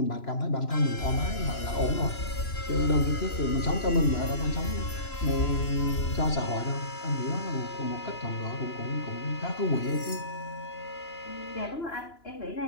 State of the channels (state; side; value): late; right; 2.9 ms